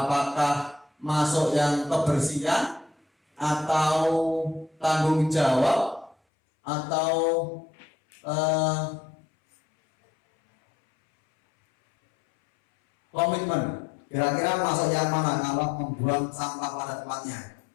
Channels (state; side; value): drops out; right; at 6.2 s